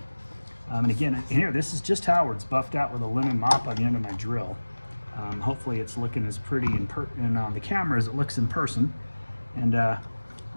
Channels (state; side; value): inverted; both; correlation -1.00